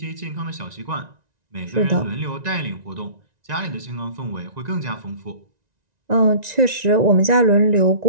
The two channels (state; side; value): late; left; 1.9 ms